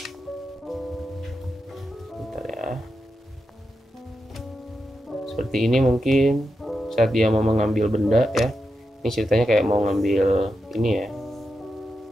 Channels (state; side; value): normal; both; correlation 0.88